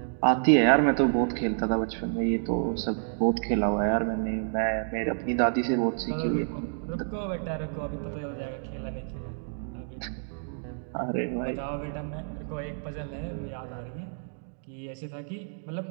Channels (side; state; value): left; silent; digital silence